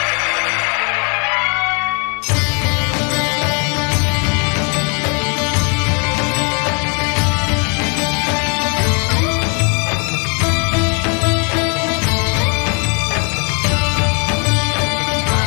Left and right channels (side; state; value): right; quieter; 36.6 dB